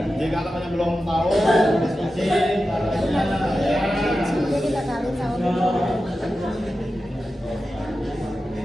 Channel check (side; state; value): both; normal; correlation 0.92